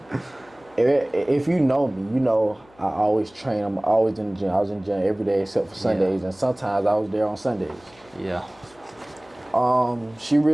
if you know me, you know I always train. I'm always in the gym. I was in the gym every day except for Sundays, and sometimes I was there on Sundays. Yeah. She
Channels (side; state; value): left; noise; hum, 28 dB below the sound